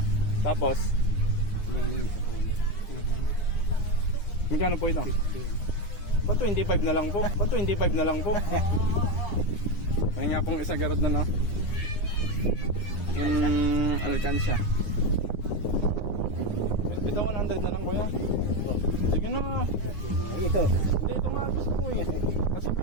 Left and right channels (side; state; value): right; late; 9.8 ms